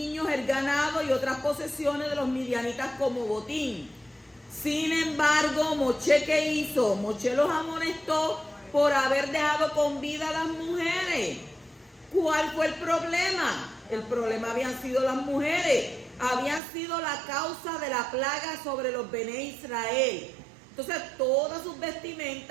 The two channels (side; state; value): left; drops out; at 16.6 s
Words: el ganado y otras posesiones de los midianitas como botín. Sin embargo, Moshe, ¿qué hizo? Moshe los amonestó por haber dejado con vida a las mujeres. ¿Cuál fue el problema? El problema habían sido las mujeres. Habían sido la causa de la plaga sobre los Bené Israel. Entonces, todas sus